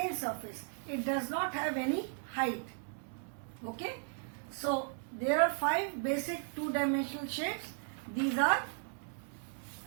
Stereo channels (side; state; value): left; silent; 54 dB below the other